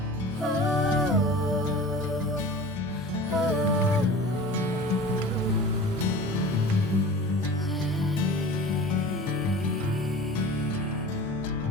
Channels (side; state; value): both; normal; correlation 0.38